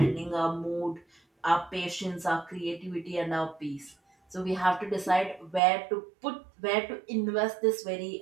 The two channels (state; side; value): drops out; left; at 5.6 s